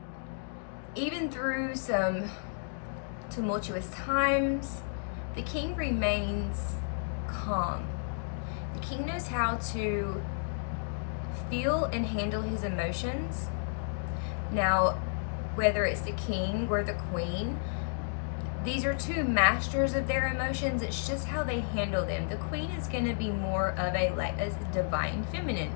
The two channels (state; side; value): silent; right; digital silence